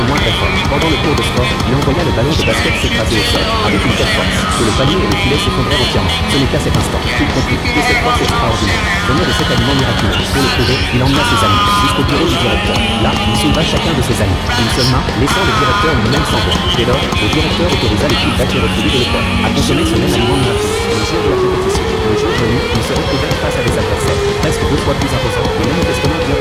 le moindre effort. Pendant le cours de sport, il envoya le ballon de basket s'écraser au sol, avec une telle force, que le panier et le filet s'effondrèrent entièrement. Ce n'est qu'à cet instant qu'il comprit que cette force extraordinaire venait de cet aliment miraculeux. Pour le prouver, il emmena ses amis jusqu'au bureau du directeur. Là, il souleva chacun de ses amis d'une seule main, laissant le directeur lui-même sans voix. Dès lors, le directeur autorisa l'équipe d'accueillir le de l'école à consommer ce même aliment miraculeux. Le jour de la compétition, le jour venu, ils se retrouvèrent face à des adversaires presque 2 fois plus imposants, mais manifestement bien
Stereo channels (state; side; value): identical; both; correlation 1.00